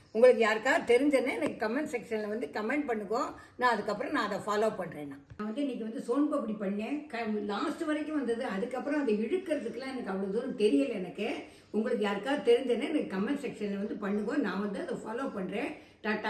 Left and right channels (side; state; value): both; identical; correlation 1.00